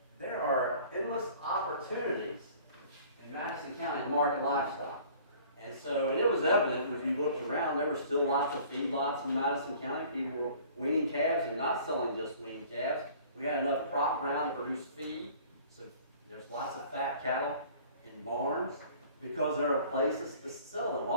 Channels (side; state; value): both; inverted; correlation -0.50